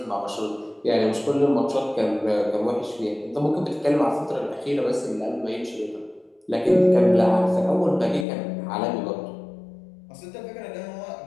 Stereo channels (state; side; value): drops out; right; at 8.2 s